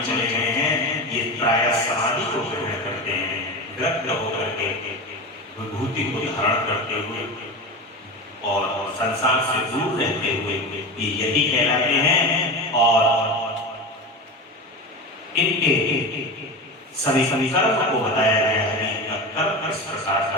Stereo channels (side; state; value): both; normal; correlation 0.25